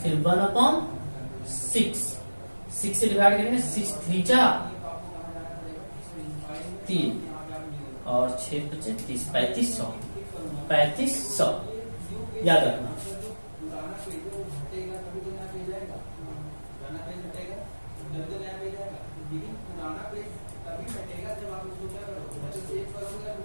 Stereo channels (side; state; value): both; inverted; correlation -1.00